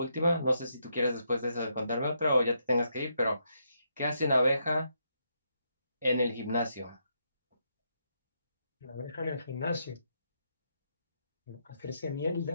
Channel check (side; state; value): both; inverted; correlation -0.79